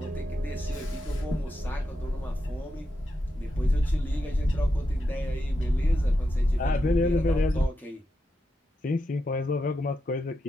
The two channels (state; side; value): normal; both; correlation 0.86